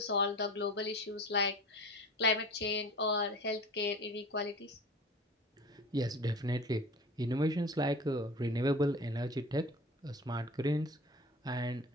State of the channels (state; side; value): normal; both; correlation 0.38